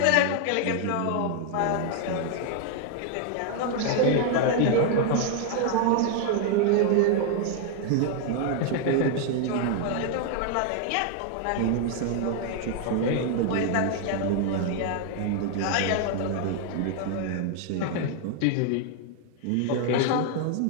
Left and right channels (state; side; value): different; both; correlation 0.00